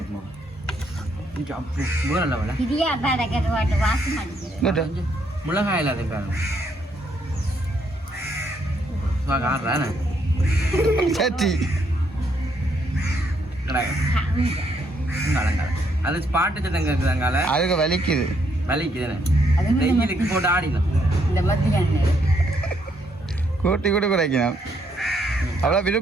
வேற லெவலில் மிளகாய் இல்லாத பாருங்க சட்டி அது பாட்டு தங்க இருக்குதாங்கால அதுக்கு வலிக்குது வெயிலுக்கு போட்டு ஆடிடும். இந்த மத்தியான கூட்டி கூட குறைக்கணும். அவ்வளோ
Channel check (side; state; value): both; normal; correlation 0.73